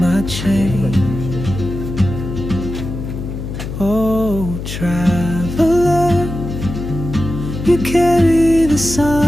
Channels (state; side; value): noise; left; hum, 7 dB below the sound